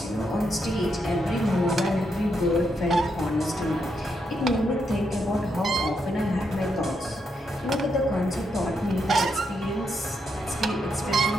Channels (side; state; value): both; normal; correlation 0.80